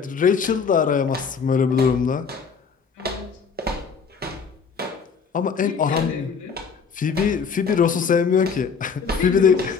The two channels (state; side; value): quieter; right; 5.8 dB